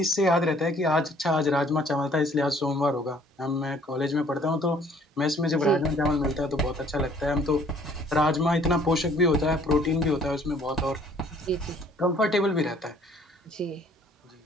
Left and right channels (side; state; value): both; normal; correlation 0.58